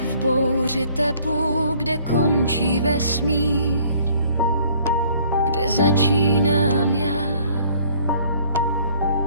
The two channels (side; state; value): both; inverted; correlation -0.58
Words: v bouři tepu, kde končí vesmír, kde začínám já.